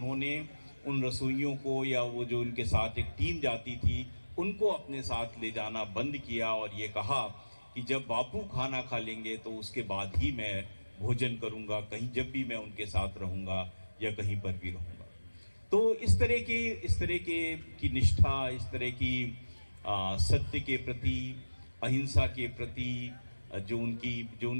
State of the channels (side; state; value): both; inverted; correlation -1.00